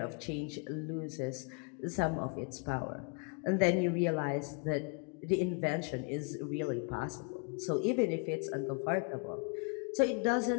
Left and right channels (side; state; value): right; quieter; 34.9 dB